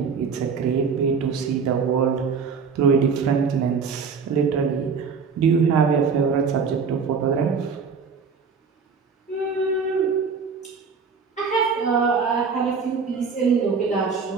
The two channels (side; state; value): left; quieter; 5.6 dB